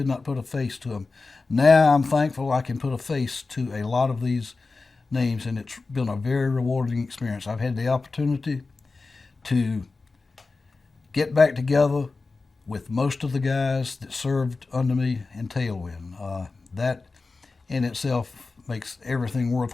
not put a face to them. Now I'm thankful I can put a face to a lot of these names, and it's been a very rewarding experience. I've had the opportunity to get back together with most of the guys that served under me in Tailwind. That in itself makes everything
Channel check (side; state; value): right; quieter; 3.9 dB